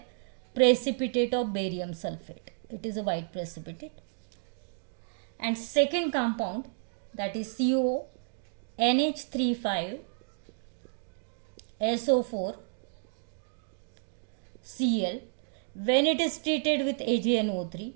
precipitate of barium sulfate. It is a white precipitate. And second compound, that is CO, NH3 SO4 Cl, when it is treated with AgNO3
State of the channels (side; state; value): left; silent; digital silence